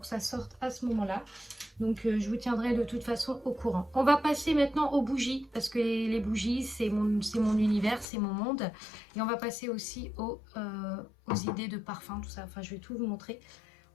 ça sorte à ce moment-là. Donc, je vous tiendrai de toute façon au courant. On va passer maintenant aux bougies, parce que les bougies, c'est mon univers, c'est mon monde. Et on va passer aussi aux idées de parfum, tout ça. Enfin, je vais tout vous montrer.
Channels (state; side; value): drops out; right; at 8.1 s